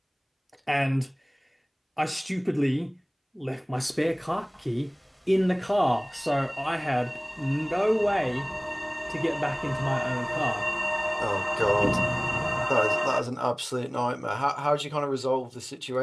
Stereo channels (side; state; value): both; identical; correlation 1.00